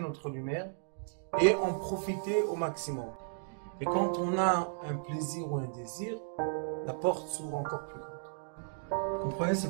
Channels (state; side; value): silent; left; digital silence